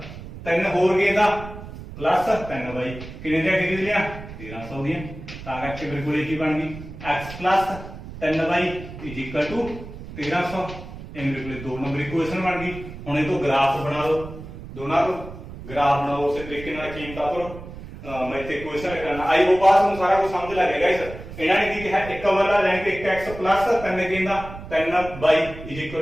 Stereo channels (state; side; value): noise; right; rumble, 13 dB below the sound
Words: 3 ਹੋਰ ਗੇਂਦਾਂ ਪਲੱਸ 3y ਕਿੰਨੇ ਦੀਆਂ ਖਰੀਦਣੀਆਂ 1300 ਦੀਆਂ। ਤਾਂ ਕਰਕੇ ਮੇਰੇ ਕੋਲ ਕੀ ਬਣ ਗਈ, x 3y = 1300। ਇਹ ਮੇਰੇ ਕੋਲ 2 ਨੰਬਰ ਇਕੁਏਸ਼ਨ ਬਣ ਗਈ। ਹੁਣ ਇਹ ਤੋਂ ਗ੍ਰਾਫ ਬਣਾ ਲਓ, ਦੋਨਾਂ ਤੋਂ ਗ੍ਰਾਫ ਬਣਾਓ ਉਸੇ ਤਰੀਕੇ ਨਾਲ ਕੀਮਤਾਂ ਤੋਂ। ਮੈਂ ਇੱਥੇ ਇਕੁਏਸ਼ਨ ਕਰਨਾ। ਆਈ ਹੋਪ ਤੁਹਾਨੂੰ ਸਾਰਾ ਕੁਝ ਸਮਝ ਲੱਗ ਗਿਆ ਗਾਇਸ। ਇਹਨਾਂ ਨੇ ਕੀ ਕਿਹਾ, ਇੱਕ ਬੱਲਾ ਜਾਨੀ ਕਿ 1x 3 ਗੇਂਦਾਂ 3y =